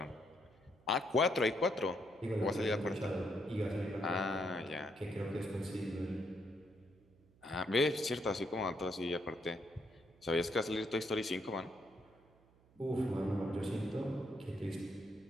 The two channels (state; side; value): noise; right; hum, 29 dB below the sound